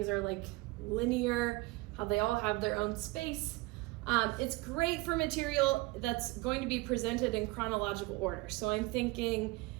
are like linear, how they all have their own space. It's great for material that's going to be presented in chronological order. So I'm thinking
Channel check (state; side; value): quieter; left; 22.0 dB